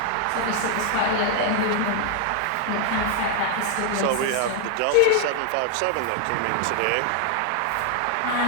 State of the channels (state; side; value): different; both; correlation 0.00